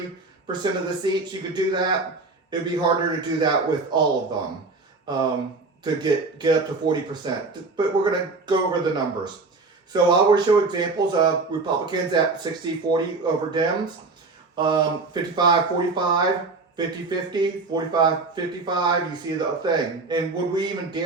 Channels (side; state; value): left; quieter; 3.8 dB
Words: of the seats. You could do that. it'd be harder to do that with all of them to get up to 40%. But we're going to go over the numbers. So I will show examples of Republicans at 60-40 over Dems, 55-45, 50-50, 45-55. You see the thing. And would we even